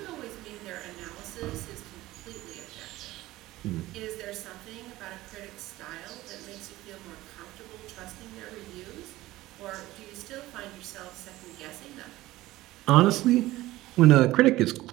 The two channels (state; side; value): quieter; left; 17.2 dB